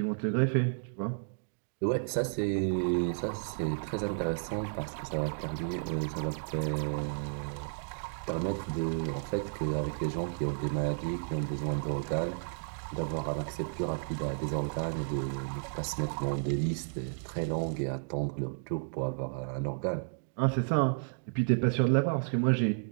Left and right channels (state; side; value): silent; left; digital silence